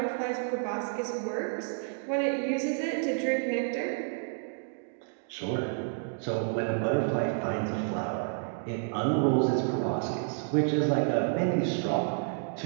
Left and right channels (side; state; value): left; silent; 58 dB below the other